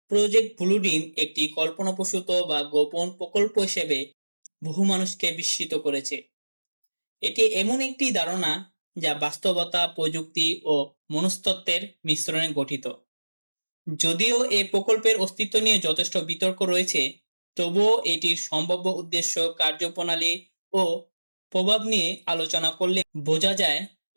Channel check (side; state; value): both; inverted; correlation -1.00